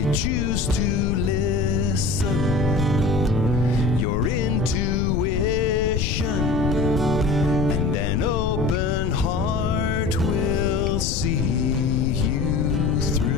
Choose to listen, your intuition, and an open heart will see you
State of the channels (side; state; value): left; noise; rumble, 2 dB below the sound